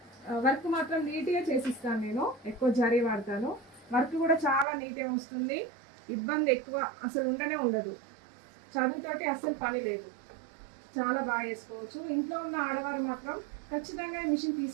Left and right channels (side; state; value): left; drops out; at 4.7 s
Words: వర్క్ మాత్రం నీట్గా చేసిస్తాను. నేను ఎక్కువ జరీ వాడతాను. వర్క్ కూడా చాలా నీట్గా వస్తుంది. ఇబ్బంది ఎక్కువ అసలు ఉండదు. చదువుతోటి అస్సలు పని లేదు. చాలా బాగా చేసుకోవచ్చు. ఇంట్లో ఉన్న ఆడవారు మాత్రం ఖచ్చితంగా మిషన్